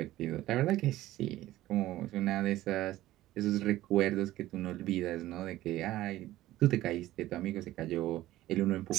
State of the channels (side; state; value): left; quieter; 15.5 dB